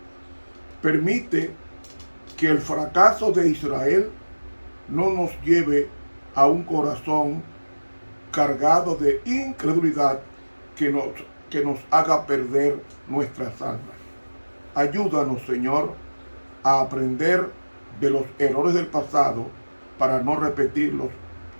Permite que el fracaso de Israel no nos lleve a un corazón cargado de incredulidad que nos haga perder nuestras almas. Ayúdanos, Señor, a aprender de los errores del pasado para no repetirlos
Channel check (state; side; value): inverted; both; correlation -1.00